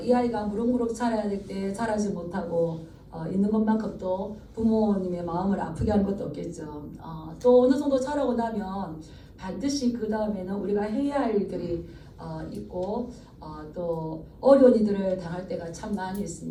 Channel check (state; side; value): identical; both; correlation 1.00